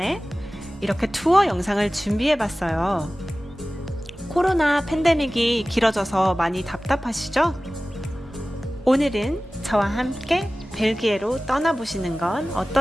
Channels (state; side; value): normal; both; correlation 0.97